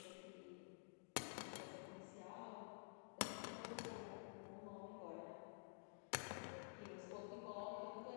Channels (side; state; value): right; silent; digital silence